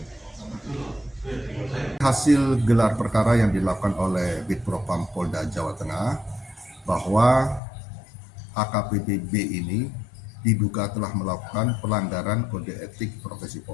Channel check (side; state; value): right; drops out; at 7.6 s